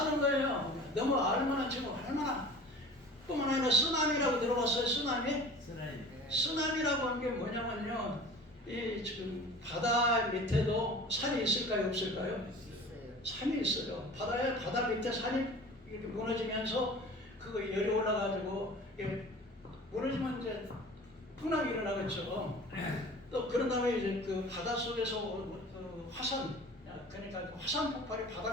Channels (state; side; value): normal; both; correlation 0.42